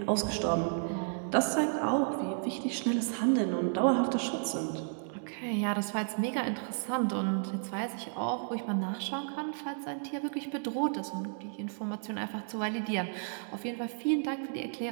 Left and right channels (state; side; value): silent; left; digital silence